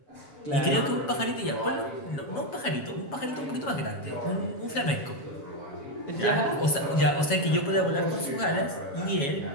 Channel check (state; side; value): late; right; 7.3 ms